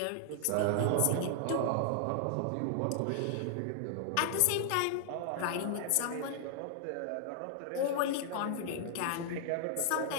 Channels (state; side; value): different; both; correlation 0.00